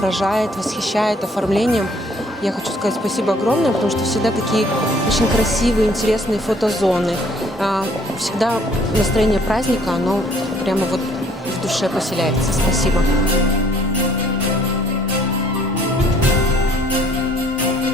восхищает оформлением. Я хочу сказать спасибо огромное, потому что всегда такие очень красивые, интересные фотозоны. Всегда настроение праздника, оно прямо вот в душе поселяется. Спасибо.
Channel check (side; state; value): both; normal; correlation 0.60